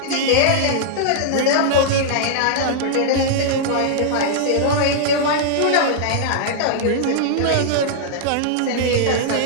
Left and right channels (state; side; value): different; both; correlation -0.01